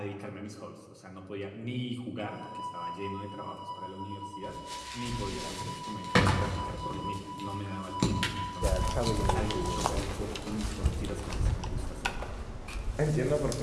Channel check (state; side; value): identical; both; correlation 1.00